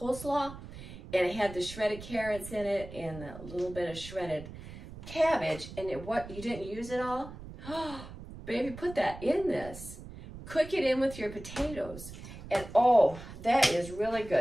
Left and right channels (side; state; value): right; noise; rumble, 13 dB below the sound